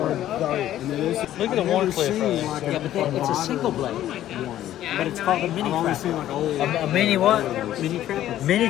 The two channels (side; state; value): right; quieter; 12.6 dB